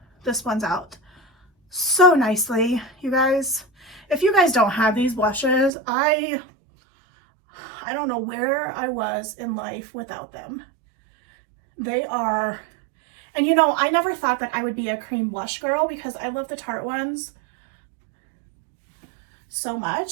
This one's out so nicely, you guys. If you guys don't have these blushes, I don't know where I was in life without them. They are, and you know, I never thought that I would be a cream blush girl because I love the Tarte ones so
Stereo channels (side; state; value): left; drops out; at 5.7 s